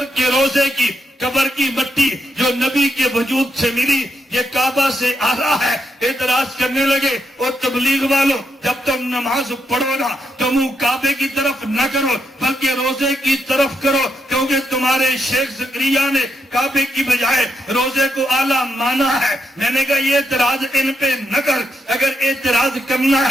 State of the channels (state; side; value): normal; both; correlation 0.81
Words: کے روزے کی قبر کی مٹی جو نبی کے وجود سے ملی یہ کعبہ سے آ رہا ہے۔ اعتراض کرنے لگے، اور تبلیغ والوں جب تم نماز پڑھو نا تو منہ کعبے کی طرف نہ کرو بلکہ روزے کی طرف کرو، کیونکہ تمہارے شیخ زکریا نے کعبے کی بجائے روزے کو اعلیٰ مانا ہے۔ میں نے کہا یہ اعتراض ان پہ نہ کر، اگر اعتراض کرنا